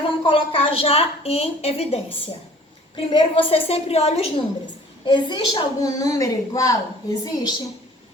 vamos colocar já em evidência. Primeiro, você sempre olha os números. Existe algum número igual? Existe?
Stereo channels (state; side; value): normal; both; correlation 0.51